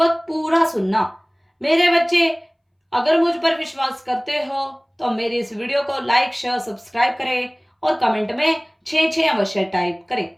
पूरा सुनना। मेरे बच्चे, अगर मुझ पर विश्वास करते हो तो मेरी इस वीडियो को लाइक शेयर सब्सक्राइब करें और कमेंट में 6 अवश्य टाइप करें।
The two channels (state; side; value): identical; both; correlation 1.00